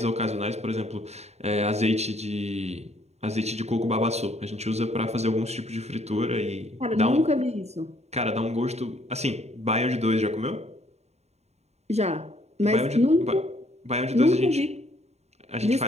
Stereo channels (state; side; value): late; left; 0.31 ms